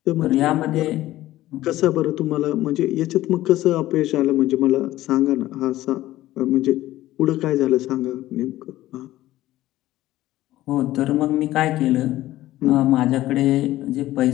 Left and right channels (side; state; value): right; quieter; 15.5 dB